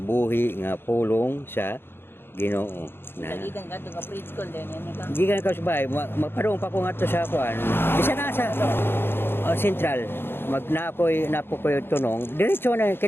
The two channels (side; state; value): right; late; 0.11 ms